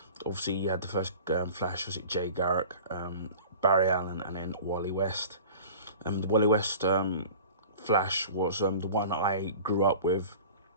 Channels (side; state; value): both; inverted; correlation -0.40